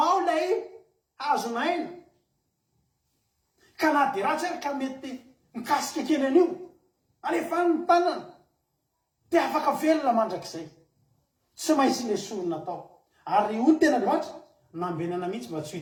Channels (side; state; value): both; identical; correlation 1.00